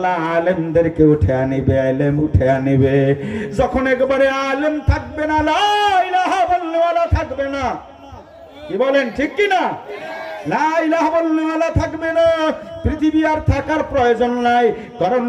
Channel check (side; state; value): both; identical; correlation 1.00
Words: আলেমদেরকে উঠে আনিবে, ইলম উঠে আনিবে। যখন একবারে আলেম থাকবে না, লা ইলাহা ইল্লাল্লাহ থাকবে না, কি বলেন ঠিক কি না? লা ইলাহা ইল্লাল্লাহ থাকবে না, পৃথিবী আর থাকার প্রয়োজন নাই। কারণ